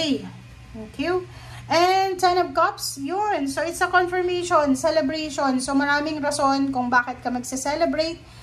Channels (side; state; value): both; identical; correlation 1.00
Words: Thank you. And 10 of Cups, yun. So, it's a confirmation, celebration. So, maraming rason kung bakit ka magse-celebrate